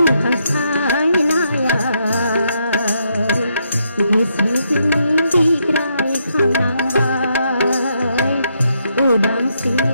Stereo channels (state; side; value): inverted; both; correlation -0.78